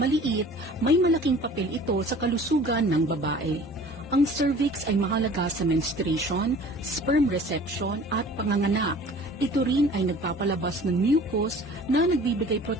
may malaking papel ito sa kalusugan ng babae. Ang cervix ay mahalaga sa menstruation, sperm reception at panganganak. Ito rin ay nagpapalabas ng mucus na nagbibigay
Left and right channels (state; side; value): normal; both; correlation 0.46